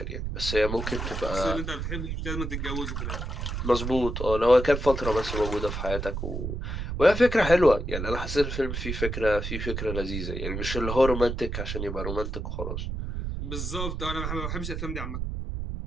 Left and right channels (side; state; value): right; noise; rumble, 4 dB below the sound